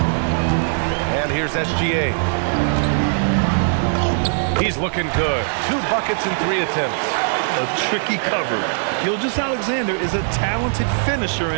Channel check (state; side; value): silent; left; 66 dB below the other